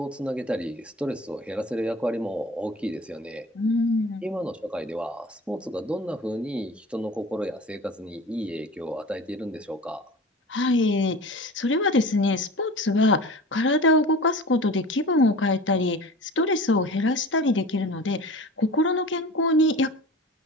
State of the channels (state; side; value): normal; both; correlation 0.37